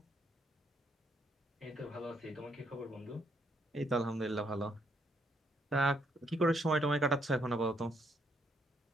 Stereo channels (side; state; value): both; normal; correlation 0.72